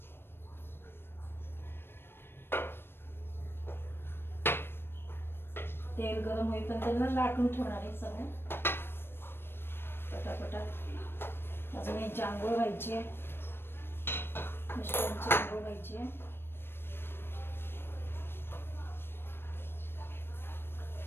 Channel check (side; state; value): right; late; 0.11 ms